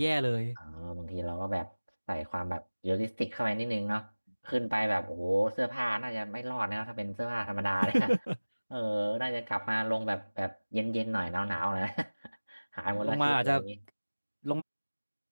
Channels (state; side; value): inverted; both; correlation -1.00